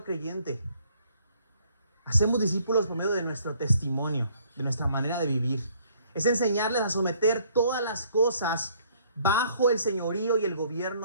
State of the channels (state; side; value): inverted; both; correlation -0.63